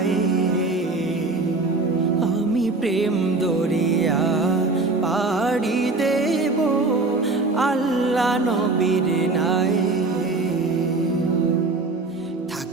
আমি প্রেম দরিয়া পাড়ি দেব আল্লাহ নবীর নাই।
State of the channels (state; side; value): quieter; left; 3.5 dB